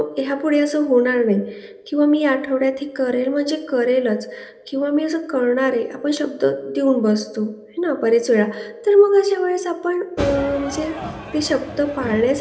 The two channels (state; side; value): identical; both; correlation 1.00